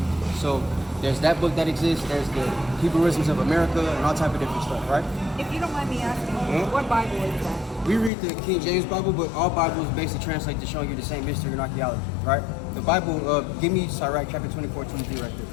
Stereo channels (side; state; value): right; drops out; at 8.1 s